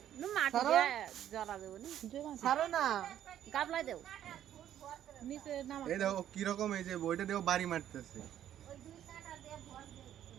নু মাটি দিয়ে জ্বলা দেব নি ছাড়ো না গাবলা দেব নিচে নামা এই দেখো কিরকম এই যে বইটা দেখো বাড়ি মারতেছে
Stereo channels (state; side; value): quieter; left; 11.0 dB